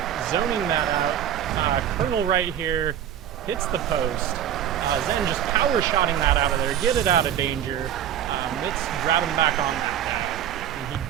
zoning that out. Colonel right here hits the post. Zen just power-shotting that out of there. Get it out of danger. Let's grab him back on that guy. And he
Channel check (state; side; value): quieter; left; 10.2 dB